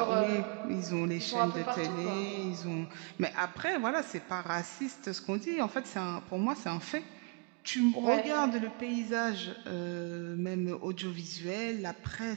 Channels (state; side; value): quieter; left; 33.5 dB